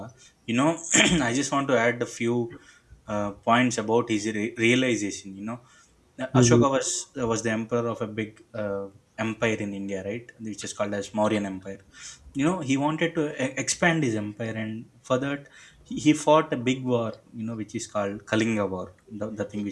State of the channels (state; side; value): identical; both; correlation 1.00